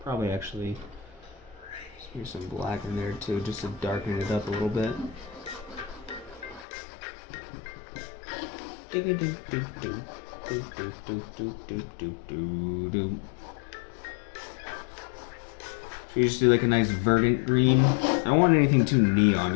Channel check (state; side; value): drops out; right; at 6.7 s